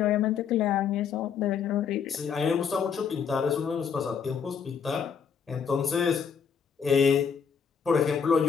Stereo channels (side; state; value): right; quieter; 6.9 dB